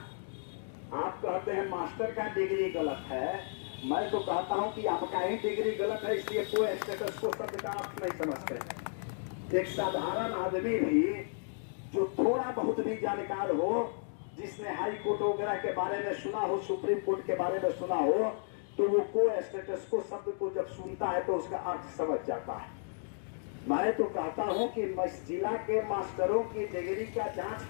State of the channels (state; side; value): silent; right; digital silence